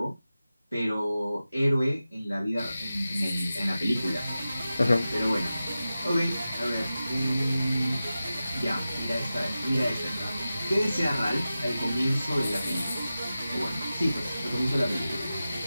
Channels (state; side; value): inverted; both; correlation -0.93